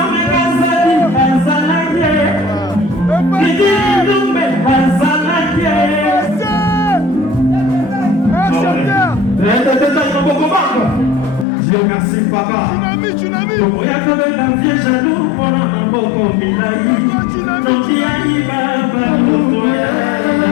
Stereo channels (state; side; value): drops out; right; at 11.5 s